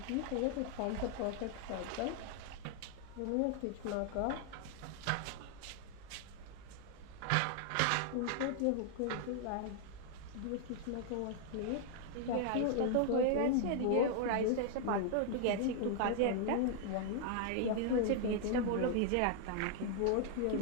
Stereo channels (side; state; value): both; different; correlation 0.00